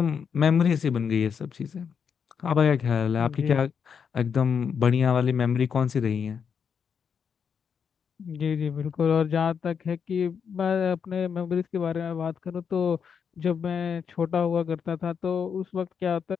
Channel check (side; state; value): right; quieter; 6.8 dB